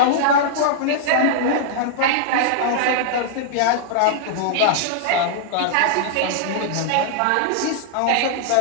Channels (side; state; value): both; different; correlation -0.01